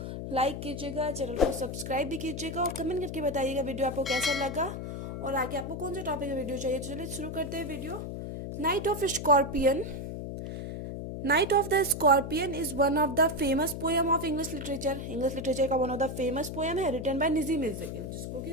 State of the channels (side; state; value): left; noise; hum, 6 dB below the sound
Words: लाइक कीजिएगा, चैनल को सब्सक्राइब भी कीजिएगा और कमेंट करके बताइएगा वीडियो आपको कैसा लगा और आगे आपको कौन सा टॉपिक का वीडियो चाहिए। तो चलिए शुरू करते हैं video. Night of scorpion. Night of the scorpion is one of the famous poem of English literature. English literature का one of the famous poem है, रिटन बाय नजीम इज़्ज़कील, जिसको